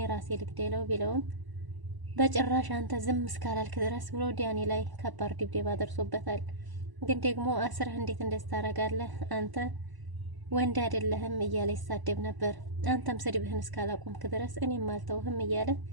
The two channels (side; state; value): left; late; 1.0 ms